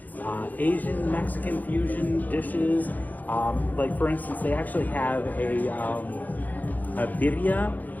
Asian Mexican fusion dishes. Like for instance, they actually have a birria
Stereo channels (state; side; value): late; right; 0.082 ms